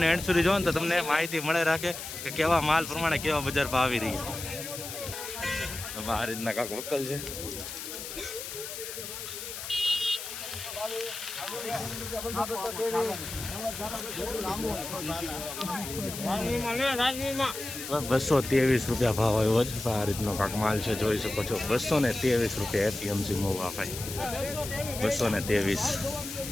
એન્ડ સુધી જોવો ને તો તમને માહિતી મળે રાખે કે કેવા માલ પ્રમાણે કેવા બજાર ભાવ આવી રહ્યા. આ રીતના કાંક વકલ છે. ₹223 રૂપિયા ભાવ આવ્યો છે. આ રીતનો કાંક માલ છે, જોઈ શકો છો. 223 રૂપિયા એપીએમસી મોવા ભાઈ. 223.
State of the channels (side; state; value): left; noise; hiss, 8 dB below the sound